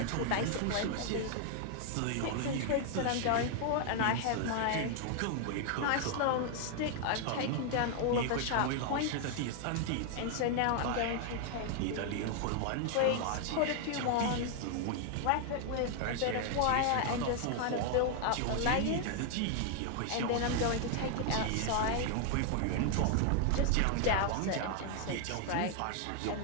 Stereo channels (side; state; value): both; different; correlation 0.00